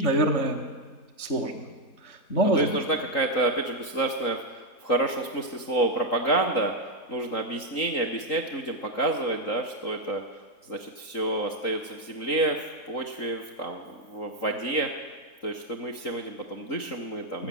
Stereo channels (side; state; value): right; late; 3.9 ms